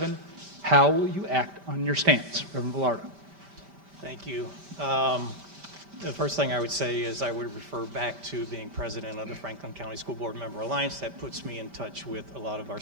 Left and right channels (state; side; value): late; left; 5.1 ms